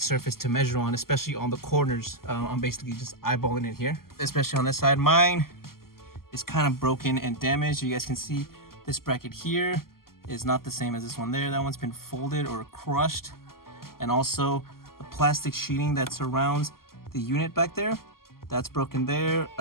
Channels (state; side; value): late; right; 0.92 ms